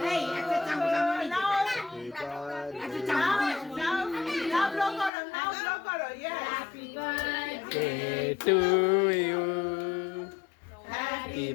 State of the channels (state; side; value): drops out; right; at 5.1 s